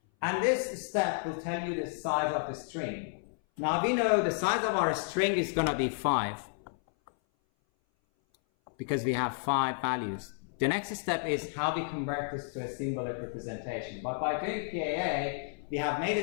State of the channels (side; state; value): right; silent; 57 dB below the other